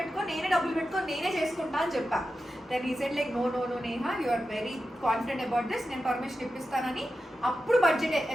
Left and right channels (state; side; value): normal; both; correlation 0.91